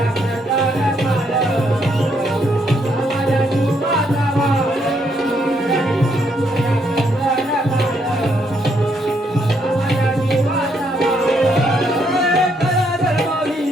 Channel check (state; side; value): normal; both; correlation 0.73